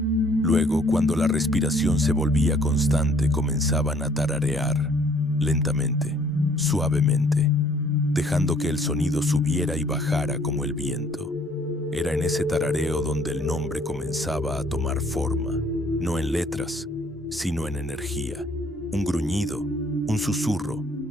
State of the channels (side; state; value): both; normal; correlation 0.60